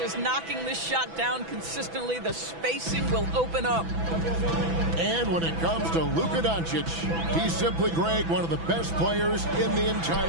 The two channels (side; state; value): left; late; 6.0 ms